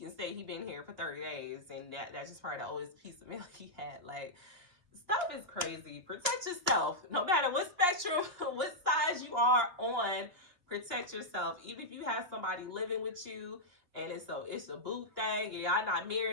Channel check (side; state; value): left; late; 2.8 ms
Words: say he been here for 30 days, and that's just probably the oldest piece of mail he had. Like, stuff is crazy. Protect yourself. No matter what spectrum, what size you are on, protect yourself. Even if you have somebody living with you, and it's a boo thing, and y'all not